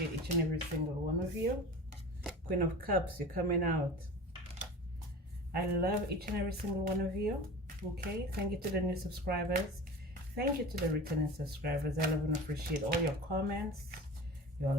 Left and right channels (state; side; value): normal; both; correlation 0.35